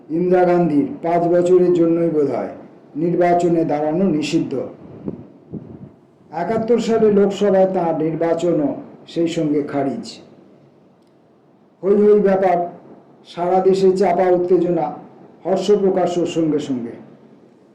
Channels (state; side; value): identical; both; correlation 1.00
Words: ইন্দিরা গান্ধীর 5 বছরের জন্যই বোধহয় নির্বাচনে দাঁড়ানো নিষিদ্ধ। 71 সালে লোকসভায় তাঁর নির্বাচনও সেই সঙ্গে খারিজ। হই হই ব্যাপার, সারা দেশে চাপা উত্তেজনা, হর্ষ প্রকাশও সঙ্গে সঙ্গে।